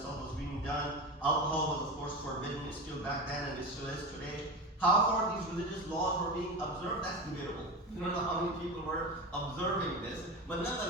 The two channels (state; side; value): normal; both; correlation 0.24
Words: was being done, alcohol was of course forbidden, it's still back then and it still is today. How far these religious laws were being observed, that's debatable. You don't know how many people were observing this, but